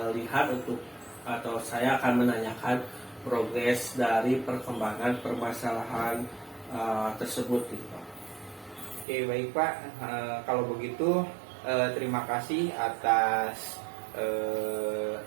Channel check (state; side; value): drops out; left; at 9.1 s